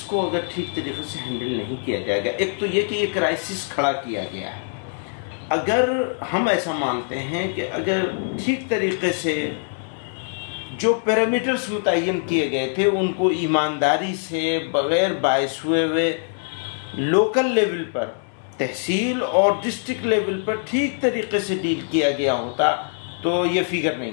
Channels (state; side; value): silent; right; 61 dB below the other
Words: کو اگر ٹھیک طریقے سے ہینڈل نہیں کیا جائے گا، ایک تو یہ کہ یہ کرائسس کھڑا کیا گیا ہے، اگر ہم ایسا مانتے ہیں کہ اگر ٹھیک طریقے سے جو پیرامیٹرز متعین کیے گئے تھے ان کو ایمانداری سے بغیر باعث ہوئے لوکل لیول پر، تحصیل اور ڈسٹرکٹ لیول پر ٹھیک طریقے سے ڈیل کیا گیا ہوتا تو یہ فگر